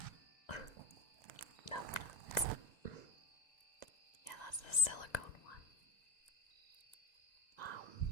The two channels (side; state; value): right; late; 2.0 ms